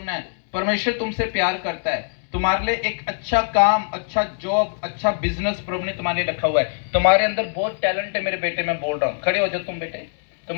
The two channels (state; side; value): silent; right; digital silence